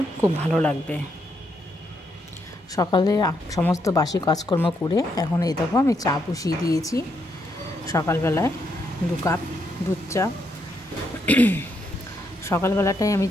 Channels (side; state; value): both; normal; correlation 0.78